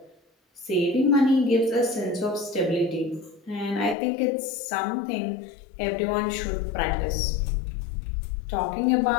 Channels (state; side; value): drops out; right; at 4.0 s